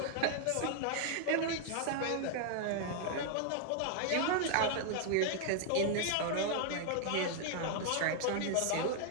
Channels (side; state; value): both; different; correlation 0.00